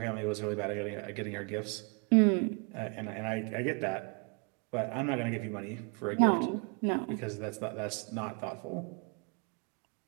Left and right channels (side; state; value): left; quieter; 35.1 dB